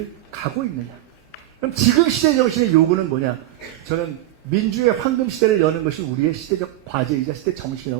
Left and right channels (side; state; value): left; quieter; 15.0 dB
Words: 가고 있는가. 그럼 지금 시대정신의 요구는 뭐냐? 저는 민주의 황금시대를 여는 것이 우리의 시대적 과제이자 시대